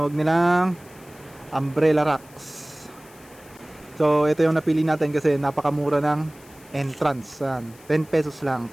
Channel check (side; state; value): left; noise; hiss, 25 dB below the sound